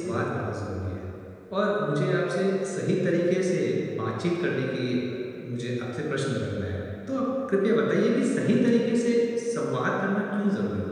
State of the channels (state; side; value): identical; both; correlation 1.00